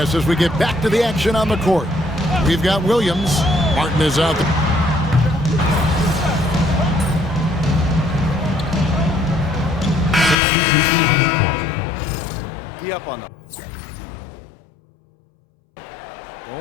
as we get back to the action on the court. We've got Williams. Martin is out. Be up on them.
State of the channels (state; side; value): drops out; right; at 10.4 s